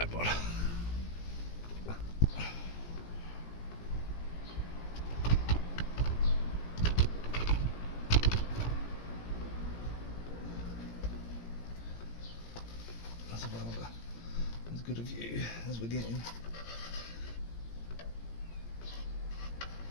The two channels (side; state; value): right; late; 17 ms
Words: That's about as good a view as we're getting.